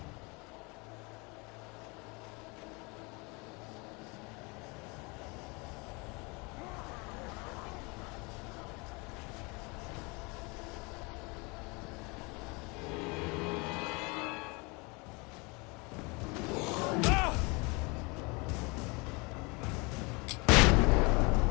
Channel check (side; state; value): right; quieter; 28.3 dB